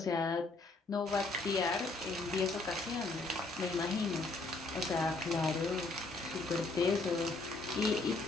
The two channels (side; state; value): right; quieter; 3.3 dB